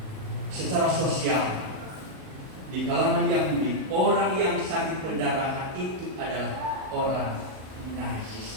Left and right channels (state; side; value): late; left; 38 ms